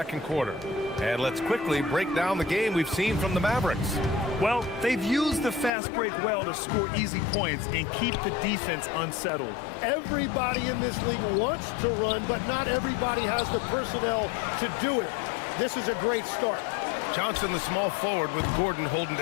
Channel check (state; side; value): drops out; right; at 5.7 s